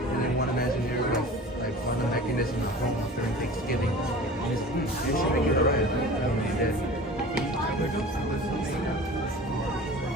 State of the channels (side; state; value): both; normal; correlation 0.39